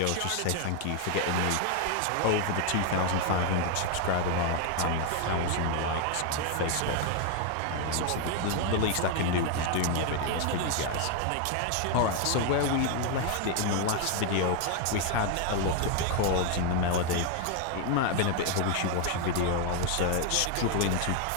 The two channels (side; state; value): both; different; correlation 0.01